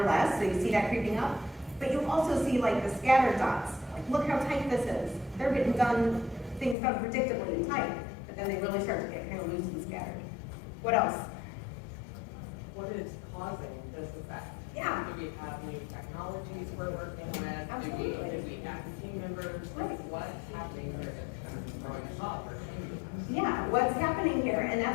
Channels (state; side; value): drops out; right; at 6.8 s